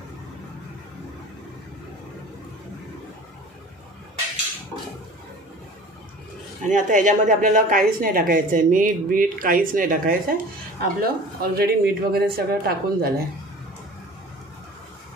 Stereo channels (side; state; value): both; normal; correlation 0.42